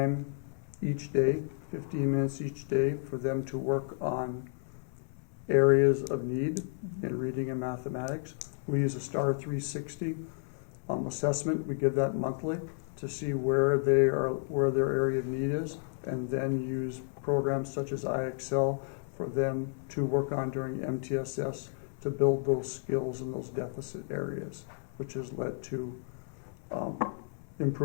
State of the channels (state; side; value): silent; right; 56 dB below the other